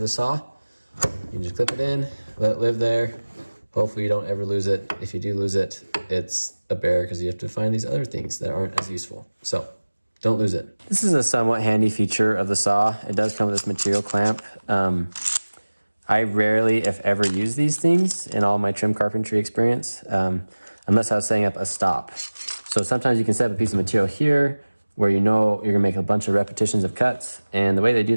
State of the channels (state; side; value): inverted; both; correlation -1.00